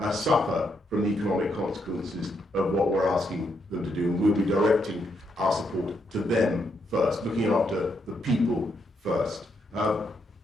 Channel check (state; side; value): normal; both; correlation 0.78